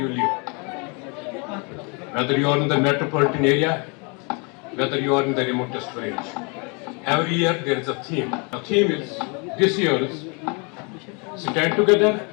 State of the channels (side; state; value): right; quieter; 33.0 dB